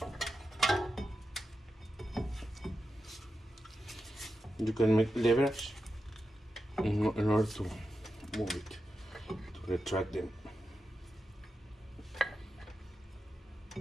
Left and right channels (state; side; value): normal; both; correlation 0.90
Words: you can make leverage in order to move it, to retract them.